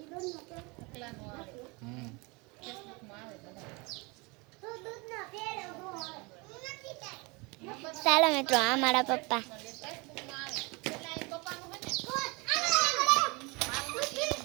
ચાલો મિત્રો, આ મારા પપ્પા.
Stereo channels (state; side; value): quieter; left; 27.4 dB